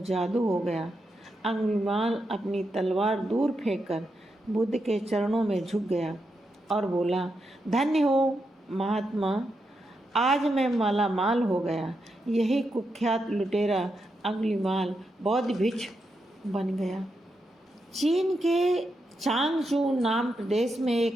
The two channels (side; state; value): both; normal; correlation 0.85